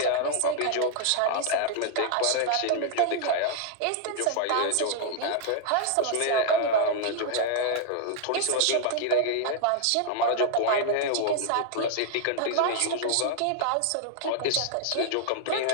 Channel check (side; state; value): both; different; correlation 0.00